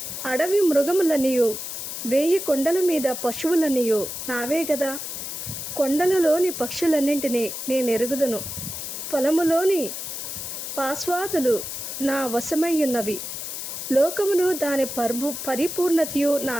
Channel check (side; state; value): left; noise; hiss, 6 dB below the sound